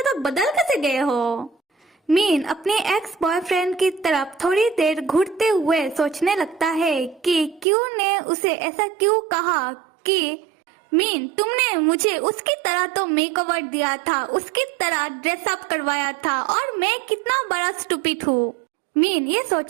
बदल कैसे गए हो। मीन अपने एक्स बॉयफ्रेंड की तरफ थोड़ी देर घूरते हुए सोचने लगता है कि क्यों ने उसे ऐसा क्यों कहा कि मीन तुमने मुझे उसकी तरह तो मेकओवर दिया था, उसकी तरह ड्रेसअप करवाया था, और मैं कितना बड़ा स्टूपिड हूँ। मीन ये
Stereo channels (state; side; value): drops out; left; at 7.7 s